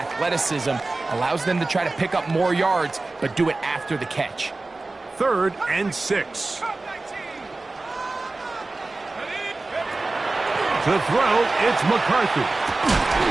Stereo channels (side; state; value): left; quieter; 3.3 dB